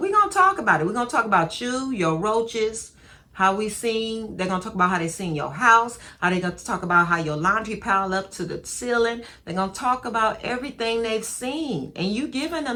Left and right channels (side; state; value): both; identical; correlation 1.00